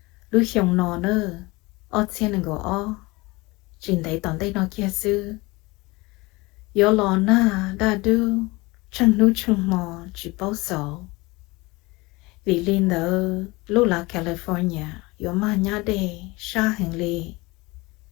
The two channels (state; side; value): quieter; right; 23.2 dB